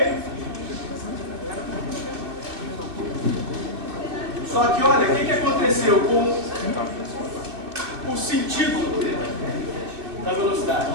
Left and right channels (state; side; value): late; left; 2.5 ms